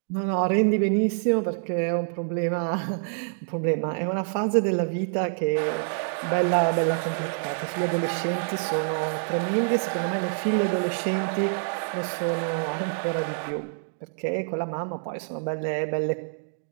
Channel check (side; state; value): left; silent; digital silence